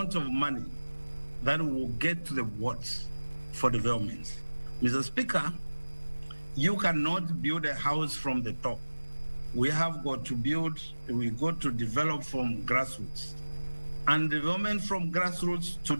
of money that will get to the wards for development. Mr. Speaker, you cannot build a house from the top. We have got to develop from grassroots. And development from grassroots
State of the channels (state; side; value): inverted; both; correlation -1.00